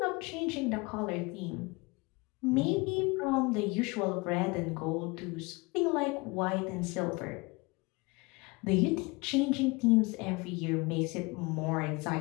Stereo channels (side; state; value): right; quieter; 25.9 dB